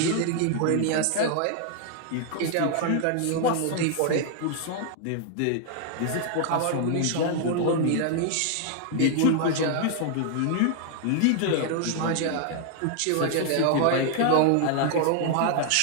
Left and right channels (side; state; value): both; different; correlation 0.00